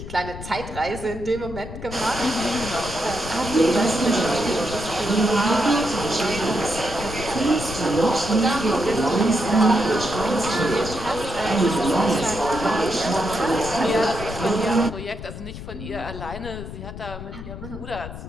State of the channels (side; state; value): left; noise; rumble, 10 dB below the sound